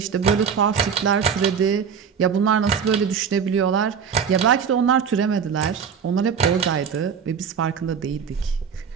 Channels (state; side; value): quieter; left; 7.0 dB